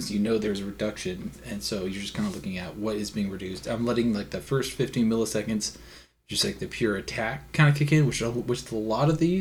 you know there's a reduction, and so you're just kind of looking at what is being reduced. I'm letting like the first 15 milliseconds, just like the pure attack kind of kick in, which a lot of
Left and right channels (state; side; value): identical; both; correlation 1.00